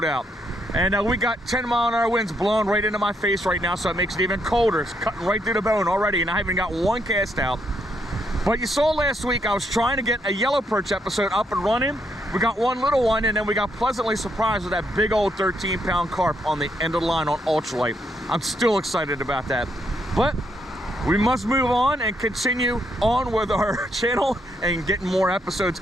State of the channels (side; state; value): both; normal; correlation 0.76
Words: out. And we got 10-mile-an-hour winds blowing right into my face right now, so it makes it even colder. It's cutting right through the bone already, and I haven't got one cast out. But you saw last week I was trying to get a yellow perch episode up and running. We got one little one, and then we got pleasantly surprised with that big old 13-pound carp on the end of the line on ultralight. I'm still excited about that. But we must move on and continue on with our channel and getting more episodes